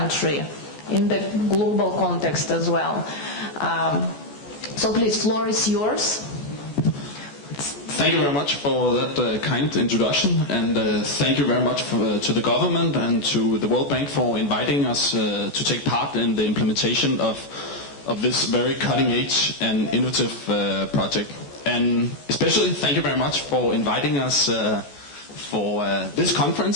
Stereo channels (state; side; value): late; right; 14 ms